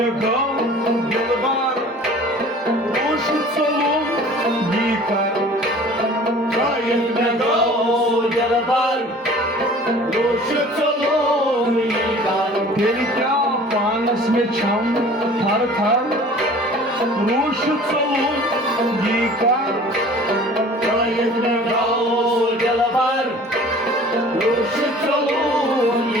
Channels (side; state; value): both; normal; correlation 0.46